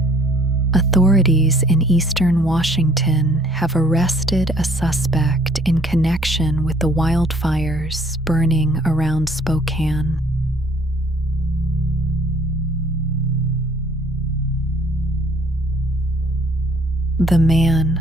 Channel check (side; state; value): both; normal; correlation 0.58